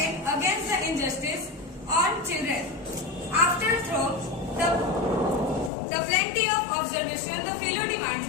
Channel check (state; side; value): drops out; right; at 5.7 s